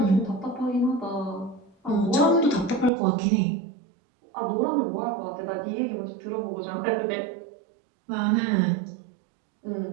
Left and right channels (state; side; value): drops out; left; at 2.9 s